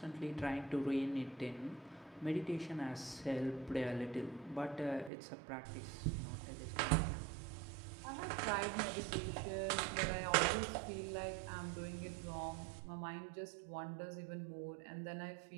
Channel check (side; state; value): left; drops out; at 5.1 s